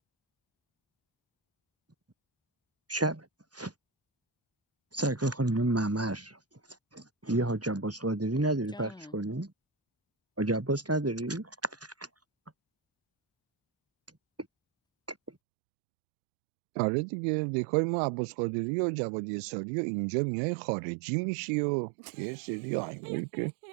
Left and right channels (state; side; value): drops out; left; at 15.3 s